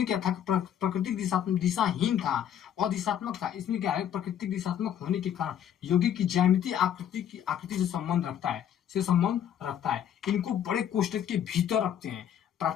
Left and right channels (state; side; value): quieter; right; 9.7 dB